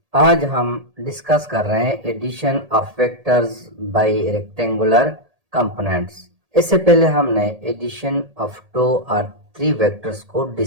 आज हम डिस्कस कर रहे हैं addition of vectors by rectangular components. इससे पहले हमने एडिशन ऑफ टू और थ्री वेक्टर्स को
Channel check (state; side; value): late; left; 1.8 ms